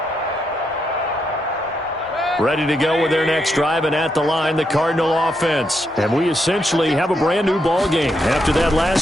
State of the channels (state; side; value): normal; both; correlation 0.80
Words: Ready to go with their next drive, and at the line, the Cardinal offense. And we essentially have a brand-new ball game. After that